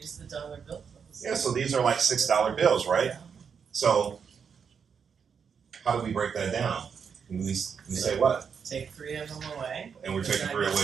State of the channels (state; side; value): quieter; left; 6.6 dB